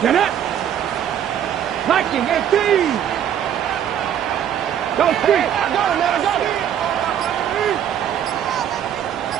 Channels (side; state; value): left; quieter; 9.8 dB